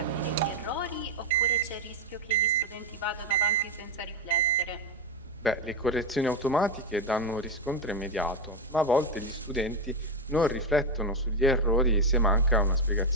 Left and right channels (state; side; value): normal; both; correlation 0.07